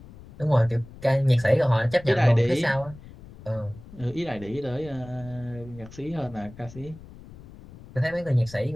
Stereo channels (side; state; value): left; noise; rumble, 19 dB below the sound